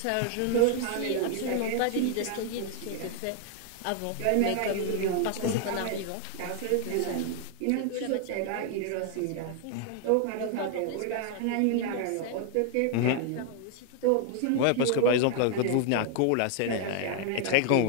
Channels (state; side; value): different; both; correlation 0.00